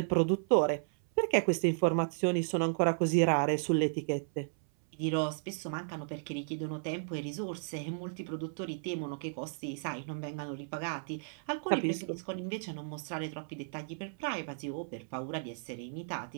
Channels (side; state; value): left; silent; 55 dB below the other